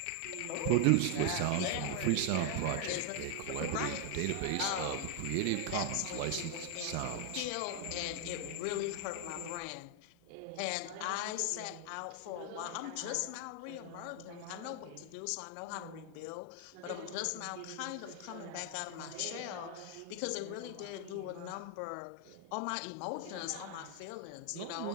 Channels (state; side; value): different; both; correlation 0.00